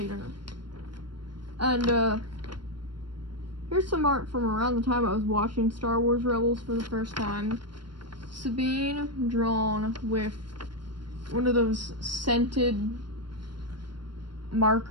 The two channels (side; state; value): left; late; 0.72 ms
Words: And here's some art from around the time I was watching Star Wars Rebels for the first time. Sabine drawn with one of those scented